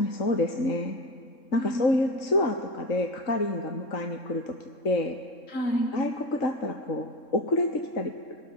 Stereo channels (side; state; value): right; late; 3.7 ms